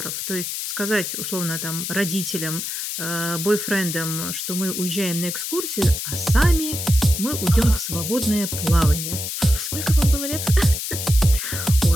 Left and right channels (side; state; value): left; noise; hiss, 4 dB below the sound